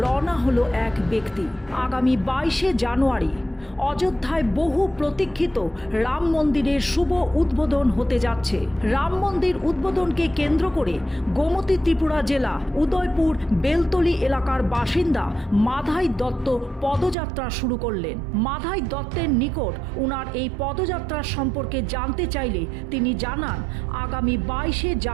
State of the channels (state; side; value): drops out; left; at 17.2 s